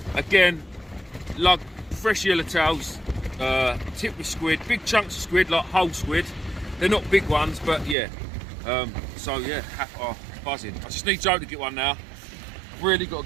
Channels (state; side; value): drops out; left; at 8.0 s